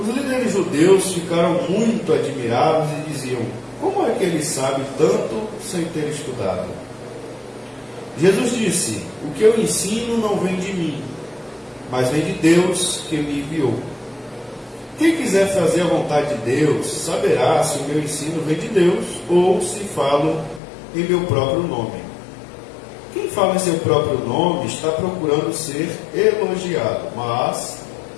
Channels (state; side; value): drops out; right; at 20.6 s